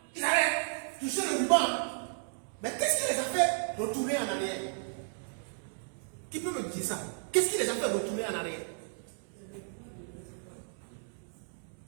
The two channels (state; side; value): silent; left; digital silence